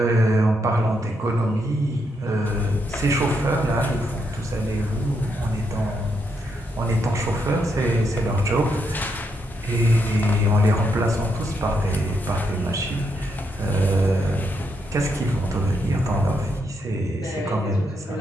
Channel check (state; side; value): normal; both; correlation 0.79